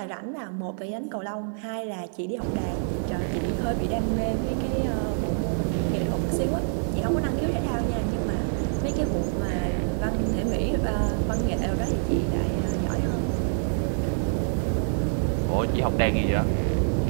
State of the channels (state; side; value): silent; left; 61 dB below the other